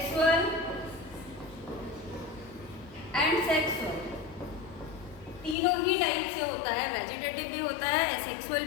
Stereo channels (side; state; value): right; drops out; at 5.6 s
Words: एंड सेक्सुअल, तीनों ही टाइप से होता है। वेजिटेटिव भी होता है, एसेक्सुअल